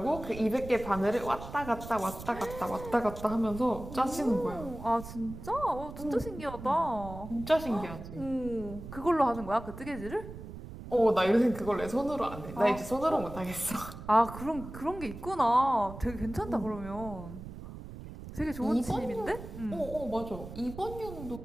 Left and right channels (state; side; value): noise; right; rumble, 12 dB below the sound